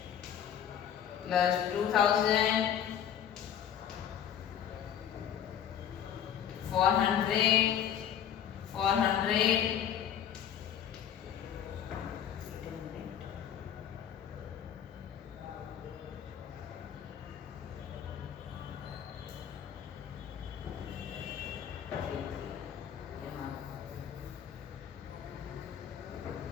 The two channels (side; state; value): right; quieter; 9.4 dB